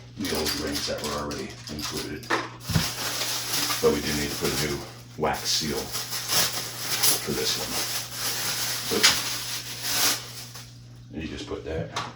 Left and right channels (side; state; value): both; identical; correlation 1.00